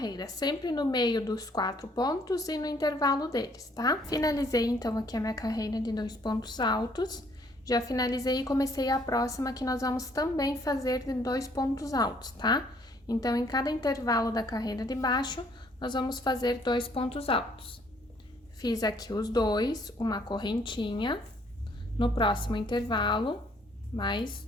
sempre no meio dos 4 pontos e no intervalo deles, tá? Finalizei então aqui a minha carreira de 2 pontos altos. Já finalizei e comecei a próxima que nós vamos também fazer de 2 pontos altos, tá? Então, em cada intervalo da carreira de baixo, nós vamos fazer 2 pontos altos. Fiz aqui os 2, uma correntinha. No próximo intervalo, mais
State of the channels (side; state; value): both; normal; correlation 0.63